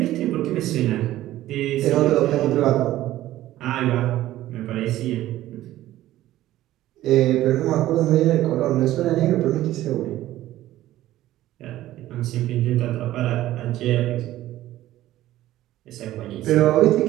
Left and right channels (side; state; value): left; quieter; 14.6 dB